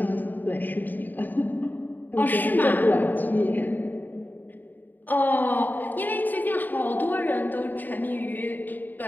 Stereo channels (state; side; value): late; right; 0.088 ms